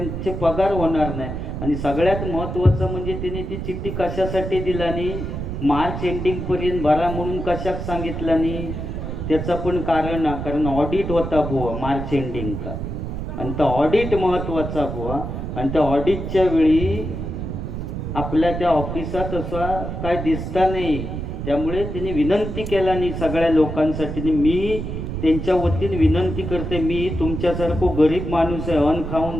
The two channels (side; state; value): right; noise; rumble, 5 dB below the sound